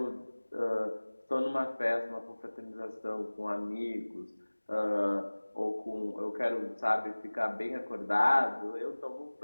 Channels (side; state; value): both; inverted; correlation -1.00